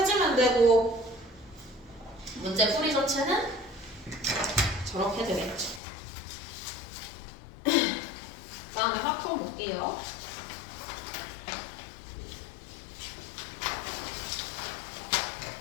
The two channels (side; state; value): right; drops out; at 5.8 s